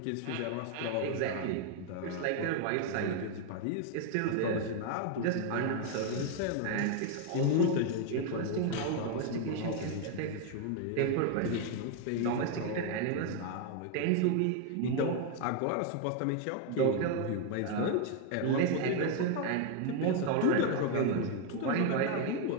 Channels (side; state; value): both; different; correlation 0.01